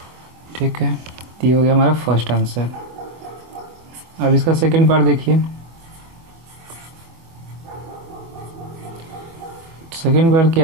ठीक है, ये हो गया हमारा फर्स्ट आंसर। अब इसका सेकंड पार्ट देखिए। सेकंड पार्ट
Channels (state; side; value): late; left; 24 ms